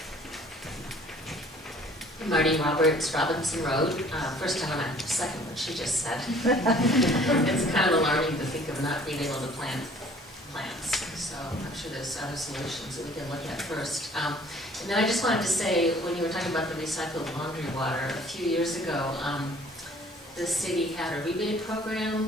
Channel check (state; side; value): normal; both; correlation 0.53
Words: Marty Roberts, Robinson Road. First, I want to second what she just said. It's kind of alarming to think of not being able to plant plants. So I'm sure there's other solutions that we can look at first. And then I just wanted to say, when you were talking about the recycled laundry water, a few years ago, the city had a rebate program